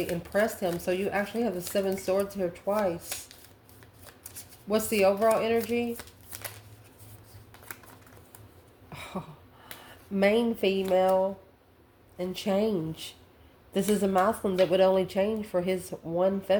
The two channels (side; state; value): both; identical; correlation 1.00